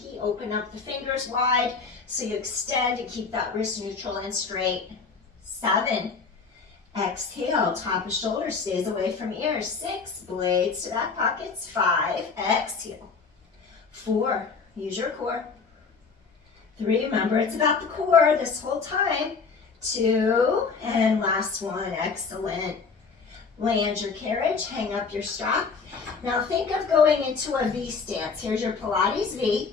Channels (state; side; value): quieter; right; 5.0 dB